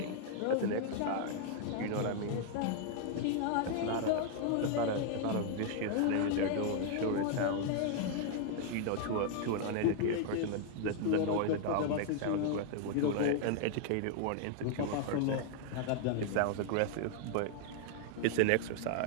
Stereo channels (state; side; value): different; both; correlation 0.00